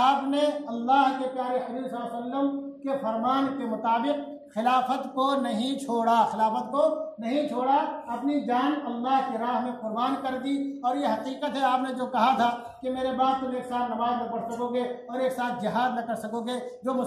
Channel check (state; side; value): identical; both; correlation 1.00